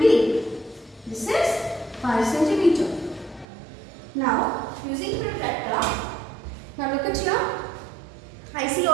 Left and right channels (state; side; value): drops out; left; at 3.5 s